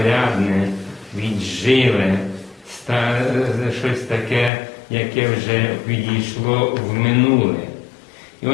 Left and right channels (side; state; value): right; drops out; at 4.5 s